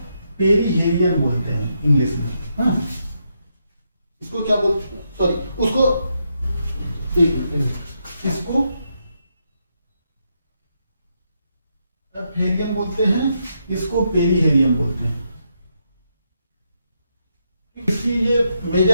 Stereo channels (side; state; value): both; inverted; correlation -0.81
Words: पेरीहेलियन बोलते हैं इंग्लिश में, हाँ। इसको क्या बोलते हैं, सॉरी, उसको इसको अपहेलियन बोलते हैं, इसको पेरीहेलियन बोलते हैं। इसकी ये